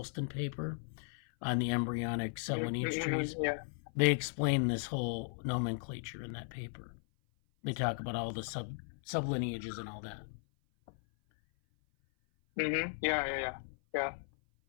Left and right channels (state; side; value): silent; right; 54 dB below the other